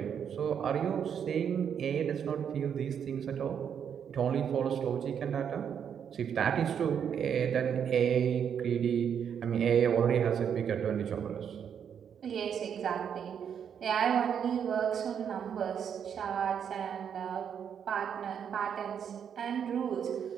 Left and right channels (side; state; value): left; quieter; 8.0 dB